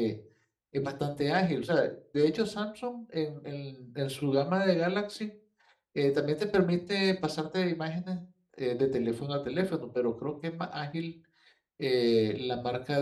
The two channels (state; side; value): identical; both; correlation 1.00